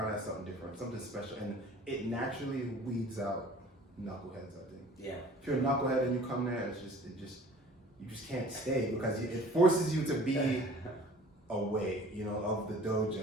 has something different, something special, and it naturally weeds out knuckleheads. I think. Yeah. If you're a knucklehead and you come there, you just can't stay because it forces you to be away, of the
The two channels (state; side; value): normal; both; correlation 0.48